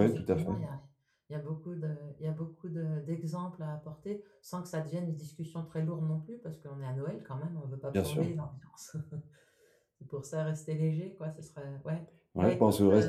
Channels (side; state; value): both; identical; correlation 1.00